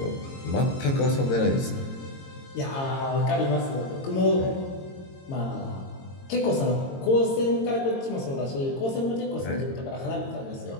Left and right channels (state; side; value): late; right; 22 ms